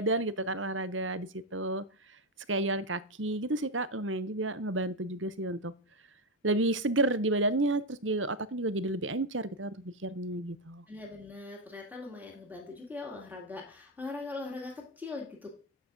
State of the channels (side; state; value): both; normal; correlation 0.06